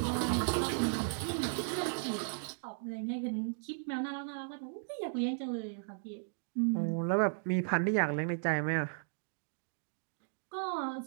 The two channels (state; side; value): silent; left; digital silence